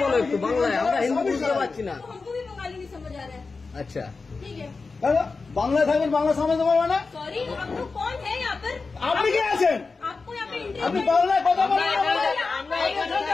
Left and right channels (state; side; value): quieter; right; 4.2 dB